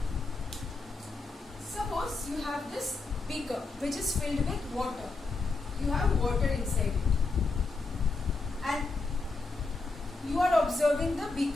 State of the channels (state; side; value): quieter; right; 3.7 dB